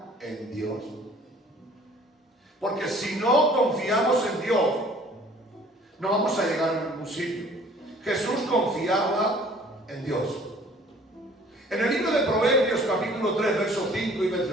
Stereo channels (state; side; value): normal; both; correlation 0.53